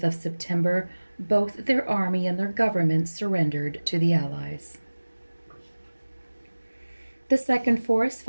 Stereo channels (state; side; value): inverted; both; correlation -1.00